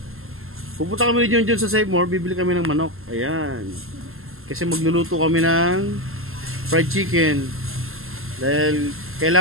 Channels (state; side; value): late; left; 0.62 ms